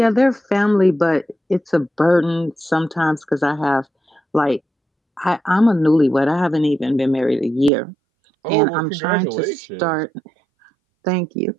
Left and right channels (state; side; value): drops out; left; at 7.7 s